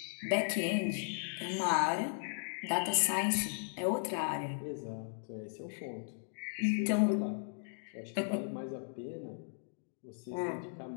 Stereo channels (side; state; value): right; silent; digital silence